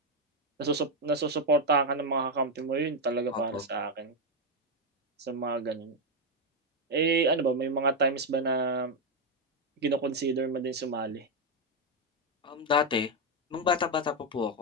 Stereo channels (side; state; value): both; normal; correlation 0.05